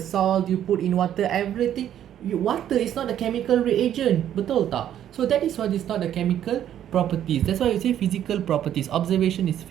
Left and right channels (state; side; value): quieter; left; 10.7 dB